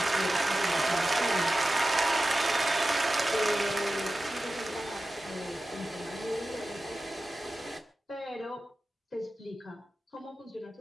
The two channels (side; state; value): both; normal; correlation 0.94